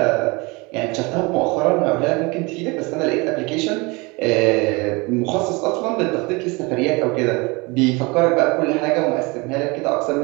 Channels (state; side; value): quieter; left; 26.5 dB